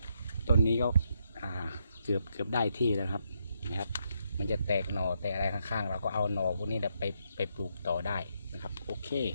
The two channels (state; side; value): inverted; both; correlation -0.78